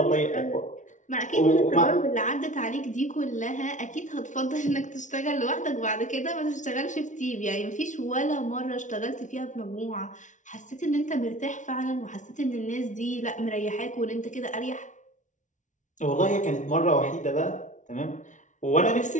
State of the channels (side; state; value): right; late; 0.36 ms